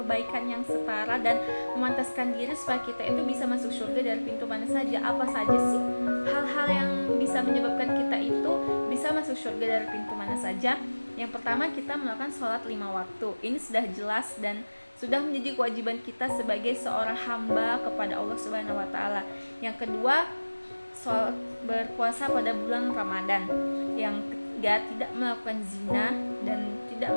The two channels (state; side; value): inverted; both; correlation -1.00